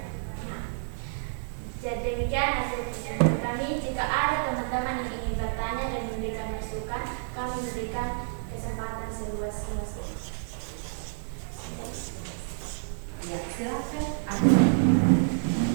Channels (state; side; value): silent; left; 59 dB below the other